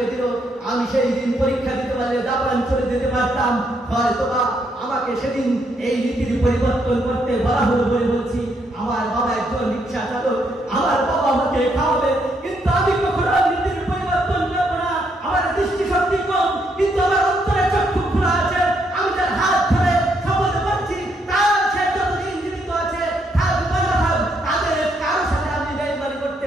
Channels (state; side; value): normal; both; correlation 0.75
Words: দিল। আমি সেই দিন পরীক্ষা দিতে পারলে জাপান চলে যেতে পারতাম। হয়তোবা আমাকে সেদিন এই নীতির পরিবর্তন করতে বলা হলো বলে বলছি। আমার বাবা একজন রিক্সা চালক, আমার বাবা আমাকে খাওয়াবে, কিন্তু আমি কখনো নীতির পরিবর্তন করবো না। আমার দৃষ্টিশক্তি কম, কিন্তু আমার অন্তরে চক্ষু খোলা আছে। আমি তার হাত ধরে শপথ করছি, তার সে যতদিন জীবিত আছে তাদের কারোর সাথে আমি বেইমানি করতে